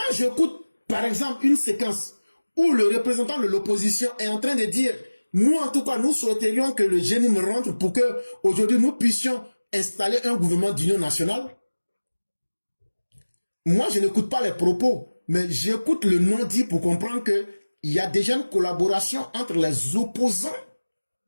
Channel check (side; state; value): both; inverted; correlation -1.00